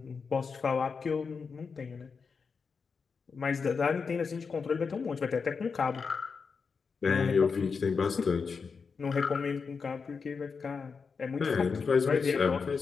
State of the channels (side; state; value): right; quieter; 5.3 dB